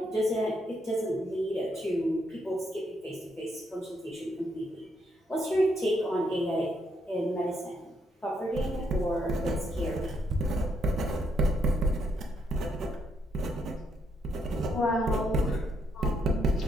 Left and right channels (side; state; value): both; normal; correlation 0.75